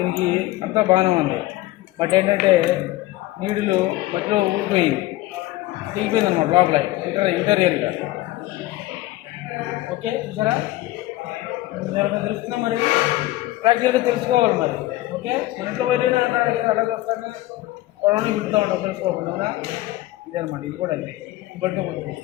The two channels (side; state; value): right; quieter; 17.4 dB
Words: అంతా బాగానే ఉంది, బట్ ఏంటంటే నీడులు మధ్యలో ఊడిపోయింది, దిగిపోయింది అనమాట లోపల ఇంటీరియర్గా. ఓకే, చూసారా? ఎవరికైనా తెలుస్తుందా మరి? ప్రాక్టికల్గా తెలుసుకోవాలి మరి. ఓకే, మన ఇంట్లో వైరైనా అలాగే వస్తాను కొడవని విడుతూ ఉంటాం తెలుసుకోకుండా, అవునా? ఇదే అనమాట, ఇది కూడా అంతే పట్టుకోకూడదు.